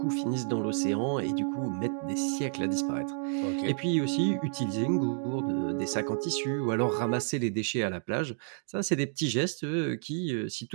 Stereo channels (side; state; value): left; silent; digital silence